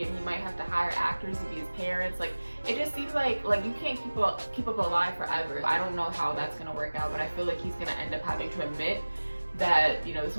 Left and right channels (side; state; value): both; inverted; correlation -1.00